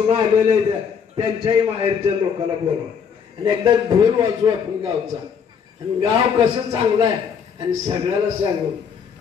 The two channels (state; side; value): quieter; right; 6.9 dB